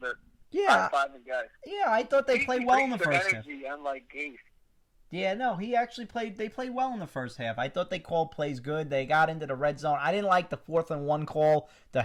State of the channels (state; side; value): identical; both; correlation 1.00